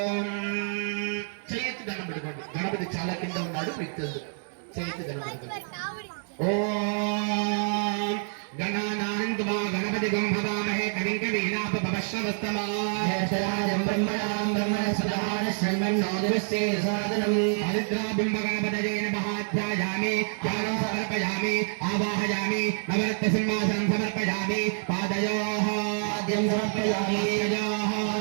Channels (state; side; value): silent; left; 60 dB below the other